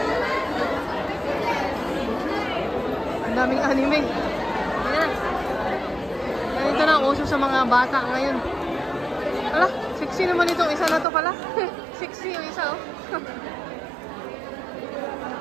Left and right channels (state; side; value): drops out; left; at 11.1 s